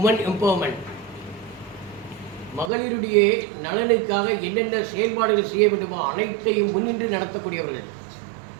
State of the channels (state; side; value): drops out; left; at 2.7 s